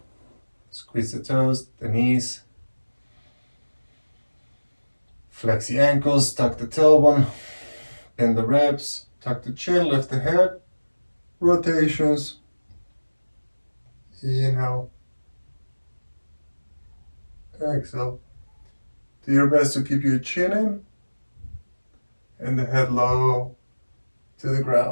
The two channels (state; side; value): inverted; both; correlation -1.00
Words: squeeze the toes, the knees, flex the ankles, tuck the tailbone, bend the ribs, tuck the chin, lift the head, rotations, inhale, exhale. Do your best to keep your chin in and the head low to the